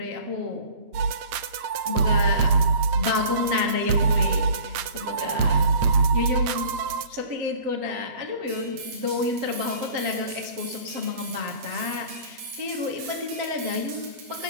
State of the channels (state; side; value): late; left; 8.6 ms